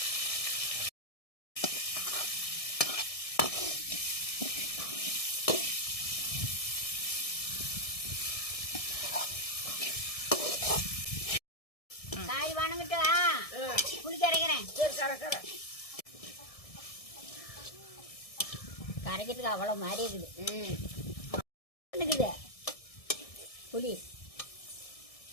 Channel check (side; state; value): right; late; 1.6 ms